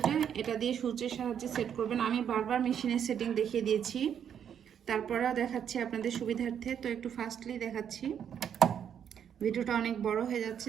এটা দিয়ে সূচের সাহায্যে সেট করবেন। আমি বারবার মেশিনের সেটিং দেখিয়ে দিয়েছি, তারপরেও দেখাচ্ছি আপনাদের সুবিধার্থে। তো একটু ফাস্টলি দেখাচ্ছি, ভিডিওটা অনেক বড় হয়ে যাচ্ছে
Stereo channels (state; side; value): quieter; left; 8.6 dB